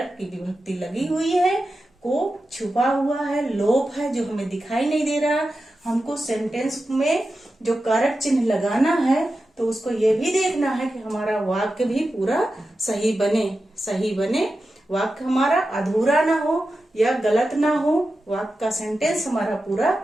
की विभक्ति लगी हुई है, को छुपा हुआ है, लोप है जो हमें दिखाई नहीं दे रहा। हमको सेंटेंस में जो कारक चिन्ह लगाना है तो उसको ये भी देखना है कि हमारा वाक्य भी पूरा सही बने, वाक्य हमारा अधूरा ना हो या गलत ना हो, वाक्य का सेंटेंस हमारा पूरा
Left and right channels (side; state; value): both; normal; correlation 0.92